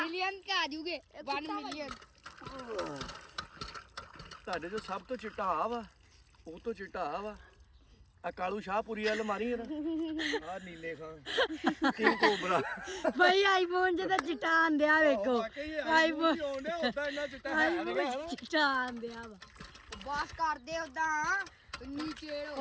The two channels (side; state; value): both; identical; correlation 1.00